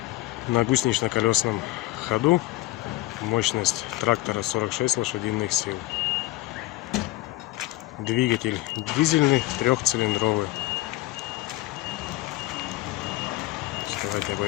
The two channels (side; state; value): right; quieter; 17.3 dB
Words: на гусенично-колесном ходу. Мощность трактора 46 лошадиных сил. Двигатель дизельный, трехцилиндровый. Давайте